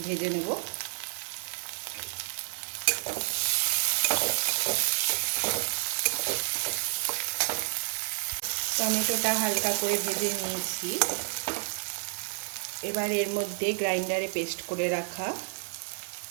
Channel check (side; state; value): left; silent; digital silence